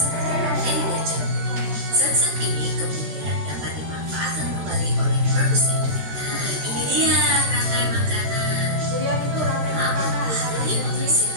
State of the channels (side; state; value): left; late; 14 ms